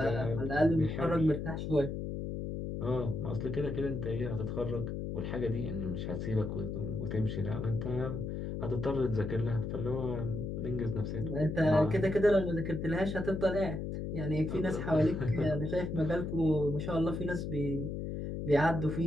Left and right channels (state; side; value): noise; left; hum, 4 dB below the sound